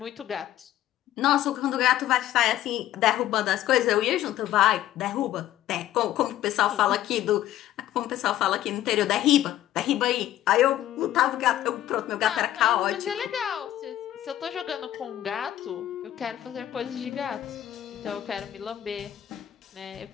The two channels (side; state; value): right; quieter; 12.9 dB